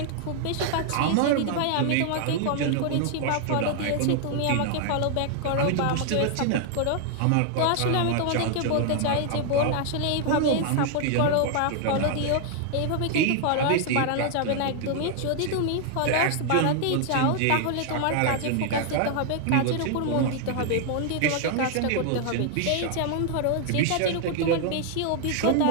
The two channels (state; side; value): different; both; correlation 0.00